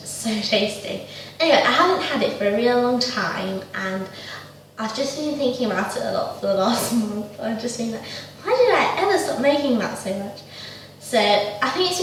tasty. Anyway, I haven't had it for a real long time and I've just been thinking about it a lot for the last month. I've just been like, why did I ever stop making that so much? So I think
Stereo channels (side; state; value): both; identical; correlation 1.00